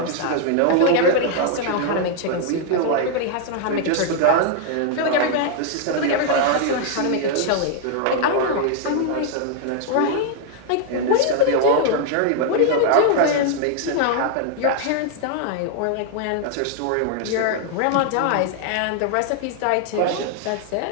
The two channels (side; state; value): both; different; correlation 0.00